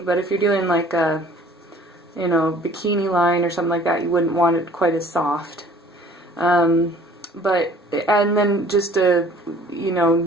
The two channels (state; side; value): normal; both; correlation 0.52